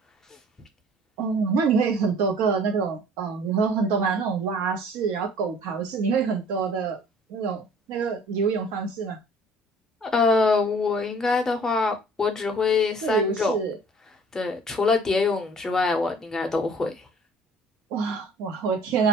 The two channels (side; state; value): both; normal; correlation 0.51